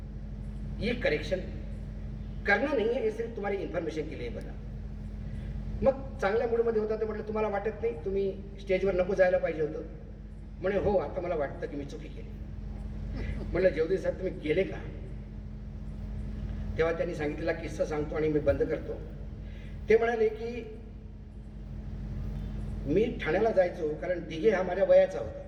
ये करेक्शन करना नहीं है, ये सिर्फ तुम्हारी इन्फॉर्मेशन के लिए बना। मग चांगल्या मूडमध्ये होता तर म्हटलं तुम्हाला वाटत नाही तुम्ही स्टेजवर नको जायला पाहिजे होतं? म्हणे हो, आता मला वाटतं की मी चुकी केली। म्हटलं जयदेव साहेब तुम्ही गेले का? तेव्हा त्यांनी सांगितलेला किस्सा सांगतो आणि मी बंद करतो। ते म्हणाले की मी ठाण्याला जायचो, कारण दिघे हा माझ्या वयाचा होता,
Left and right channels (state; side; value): identical; both; correlation 1.00